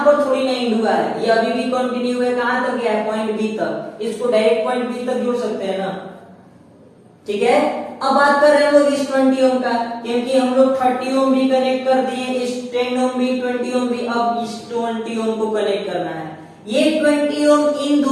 पर थोड़ी नहीं जुड़ा है, ये अभी भी कंटिन्यू है, कहां तक गया है? पॉइंट बी तक। इसको डायरेक्ट पॉइंट बी तक जोड़ सकते हैं ना। ठीक है, अब बात कर रहे हैं लोग इस 20 ओम का, क्योंकि हम लोग 30 ओम भी कनेक्ट कर दिए, इस 10 ओम भी, 20 ओम भी, अब इस 20 ओम को कनेक्ट करना है। ये 20 ओम इन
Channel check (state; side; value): identical; both; correlation 1.00